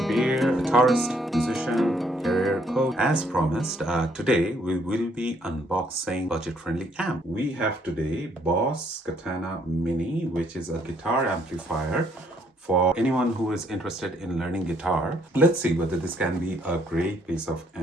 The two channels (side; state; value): both; normal; correlation 0.68